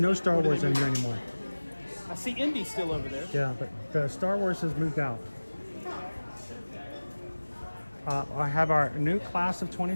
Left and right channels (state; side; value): inverted; both; correlation -1.00